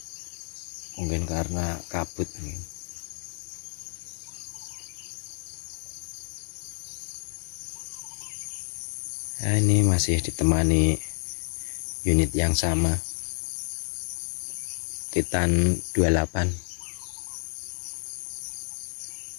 Mungkin karena kabut mungkin. Nah, ini masih ditemani unit yang sama, Titan 28.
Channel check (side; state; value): right; silent; 58 dB below the other